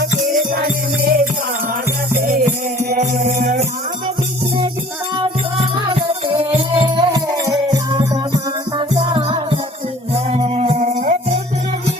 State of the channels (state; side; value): normal; both; correlation 0.51